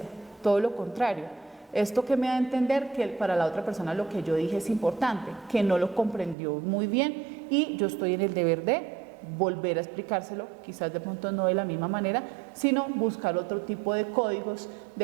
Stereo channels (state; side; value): drops out; left; at 6.4 s